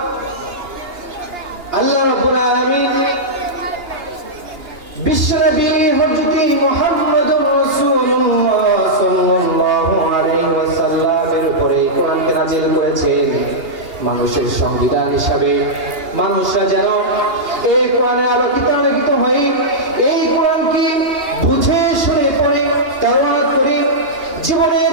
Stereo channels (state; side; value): late; left; 2.8 ms